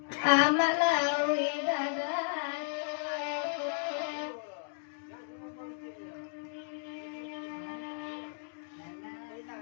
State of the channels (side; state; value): right; silent; digital silence